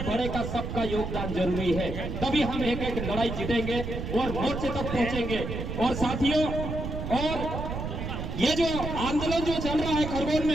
बड़े का सबका योगदान जरूरी है। तभी हम एक एक लड़ाई जीतेंगे और मोर्चे तक पहुंचेंगे। और साथियों, और ये जो आंदोलन जो चल रहा है खरगोन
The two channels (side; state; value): right; noise; rumble, 5 dB below the sound